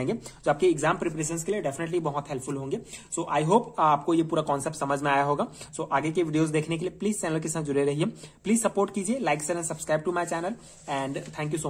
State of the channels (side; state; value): both; identical; correlation 1.00